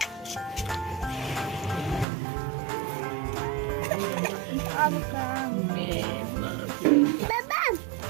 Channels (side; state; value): left; drops out; at 2.1 s